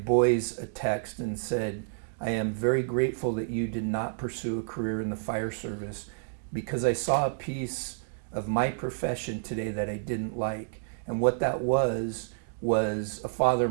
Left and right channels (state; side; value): silent; left; digital silence